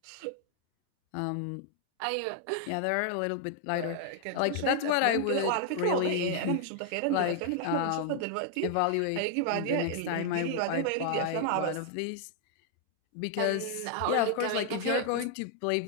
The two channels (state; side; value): different; both; correlation 0.00